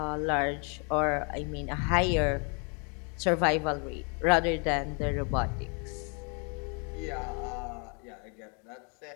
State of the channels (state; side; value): quieter; right; 37.4 dB